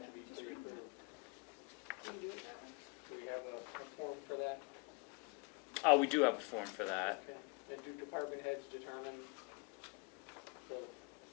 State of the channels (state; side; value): quieter; right; 30.7 dB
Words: to be pre-approved? Can you do it that way? Do we have a form for that? We do have a form for that. Okay. And do department heads determine the,